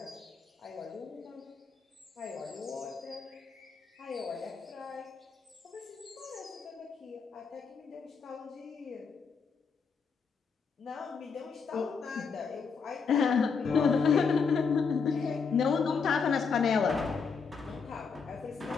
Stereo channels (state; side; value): quieter; right; 5.5 dB